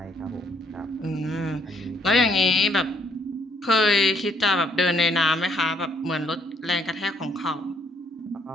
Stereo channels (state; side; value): normal; both; correlation 0.67